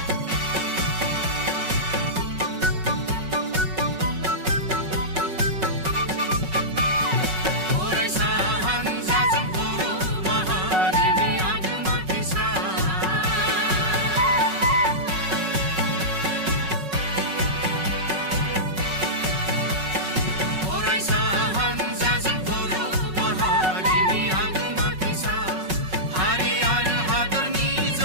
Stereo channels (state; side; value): late; left; 5.4 ms